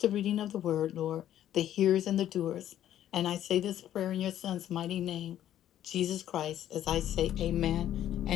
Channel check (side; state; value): right; quieter; 11.6 dB